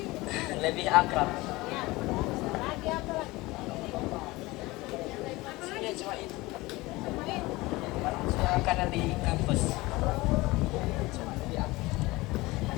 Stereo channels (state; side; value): quieter; right; 20.9 dB